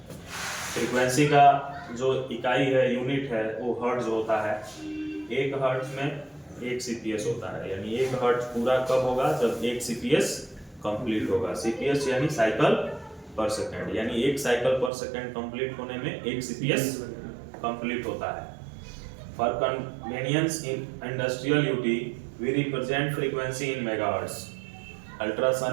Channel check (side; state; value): left; drops out; at 14.9 s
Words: फ्रीक्वेंसी का जो इकाई है, यूनिट है, वो हर्ट्ज होता है। 1 हर्ट्ज में 1 सीपीएस होता है, यानी 1 हर्ट्ज पूरा कब होगा? जब 1 सीपीएस कंप्लीट होगा। सीपीएस यानी साइकिल पर सेकेंड, यानी 1 साइकिल पर सेकेंड कंप्लीट होने में 1 सीपीएस कंप्लीट होता है। For convenience in industrial UT we represent frequency in megahertz.